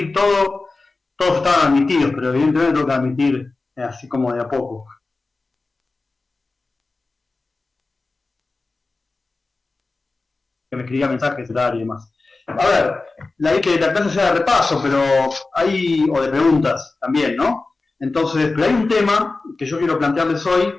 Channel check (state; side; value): quieter; right; 3.6 dB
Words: todo, todos estaban admitidos, pero evidentemente tengo que admitir así como de a poco. Que me escribía mensajes y demás. A ver, la idea que la clase sea de repaso, pero hay, o de preguntas también, ¿no? Entonces, pero hay un tema que yo quiero plantearles hoy,